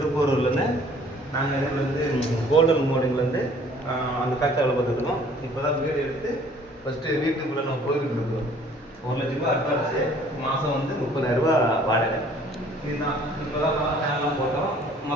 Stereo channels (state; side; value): normal; both; correlation 0.55